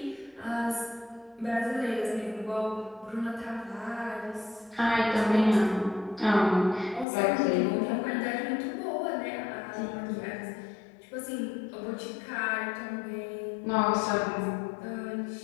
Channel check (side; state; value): right; drops out; at 7.1 s